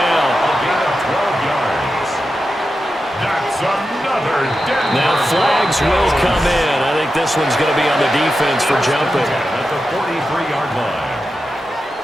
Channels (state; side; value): normal; both; correlation 0.90